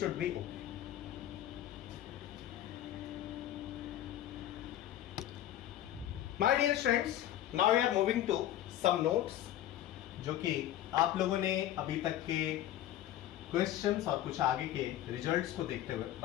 should B okay. My dear students, now we are moving to some notes जो कि आप लोगों ने अभी तक के क्वेश्चंस और कुछ आगे के रिजल्ट्स को देखते हुए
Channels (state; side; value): quieter; right; 12.6 dB